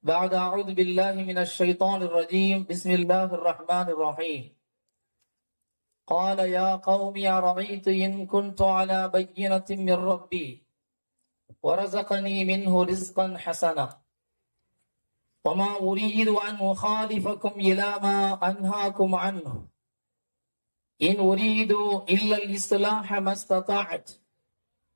بعد أعوذ بالله من الشيطان الرجيم بسم الله الرحمن الرحيم. قال يا قوم أرأيت إن كنت على بينة من ربي ورزقني منه رزقا حسنا وما أريد أن أخالفكم إلى ما أنهاكم عنه إن أريد إلا الإصلاح ما استطعت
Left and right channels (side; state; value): both; inverted; correlation -1.00